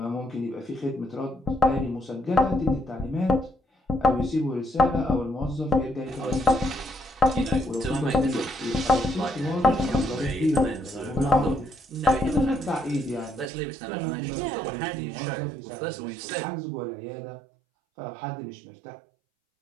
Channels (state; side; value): drops out; left; at 13.5 s